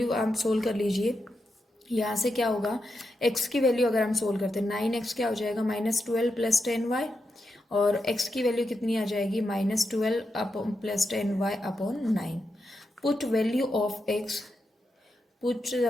आप सोल्व कर लीजिए। यहाँ से क्या होगा, x की वैल्यू अगर हम सोल्व करते हैं 9x क्या हो जाएगा -12 प्लस 10y, और x की वैल्यू कितनी आ जाएगी -12 plus 10y/9। Put value of x, put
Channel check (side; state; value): both; normal; correlation 0.86